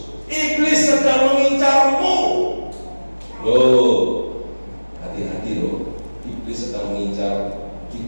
iblis sedang mengincarmu. Loh, hati-hati loh, iblis sedang mengincar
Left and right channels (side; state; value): both; inverted; correlation -1.00